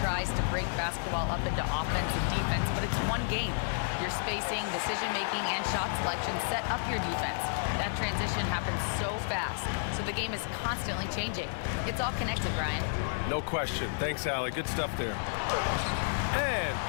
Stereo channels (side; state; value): right; silent; 57 dB below the other